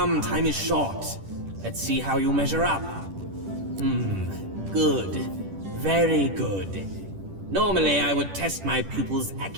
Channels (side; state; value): left; late; 10 ms